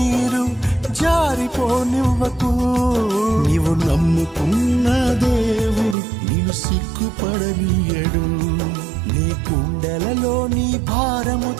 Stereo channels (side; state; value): left; drops out; at 6.0 s